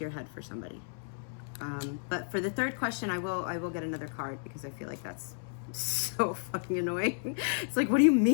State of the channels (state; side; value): silent; right; 56 dB below the other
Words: your head for somebody. But for the third question, I will get another card, because I feel like that's so fucking annoying. It's like, what do you